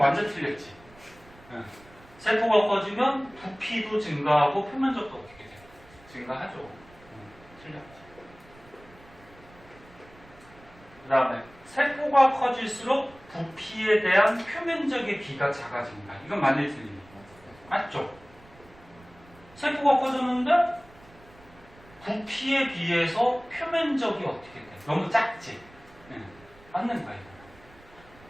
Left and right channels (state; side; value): noise; right; rumble, 24 dB below the sound